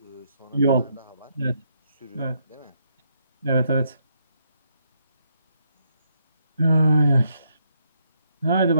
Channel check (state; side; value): inverted; both; correlation -0.75